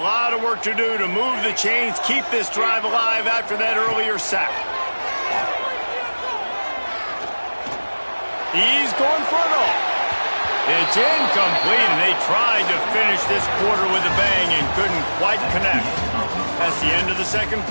lot of work to do to move the chains, keep this drive alive after that earlier sack. He's going for it all. It's incomplete, and they tried to finish this quarter with a bang and couldn't quite connect. That's the end of the second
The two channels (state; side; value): inverted; both; correlation -1.00